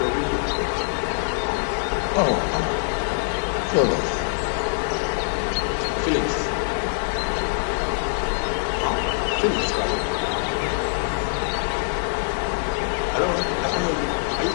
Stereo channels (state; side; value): silent; right; digital silence